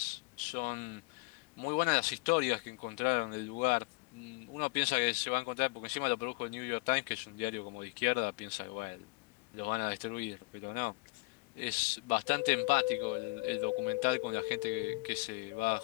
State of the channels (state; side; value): quieter; right; 27.2 dB